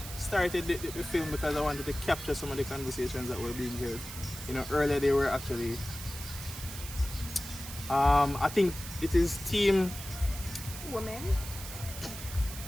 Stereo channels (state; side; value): noise; right; hiss, 10 dB below the sound